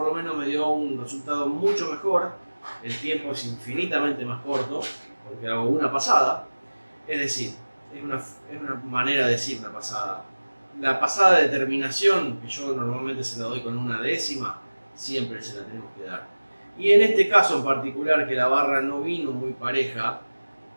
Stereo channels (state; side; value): inverted; both; correlation -1.00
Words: lo menos me dio un resultado mucho mejor. El tiempo es infinitamente más corto porque hago una pasada. Es decir, es una manera de decir una pasada. La pasada de terminación, que yo normalmente se la doy con una décima, siempre se la tenemos que dar. Y en este caso en particular, que la barra no vino muy pareja,